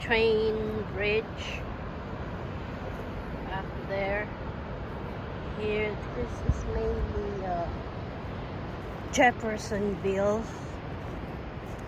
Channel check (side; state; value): both; identical; correlation 1.00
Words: bridge up there. Here, this is mainly Jeffersonville,